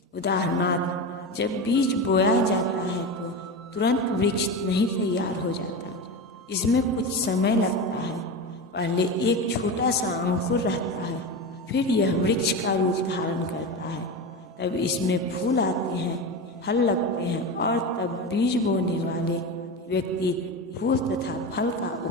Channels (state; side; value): normal; both; correlation 0.22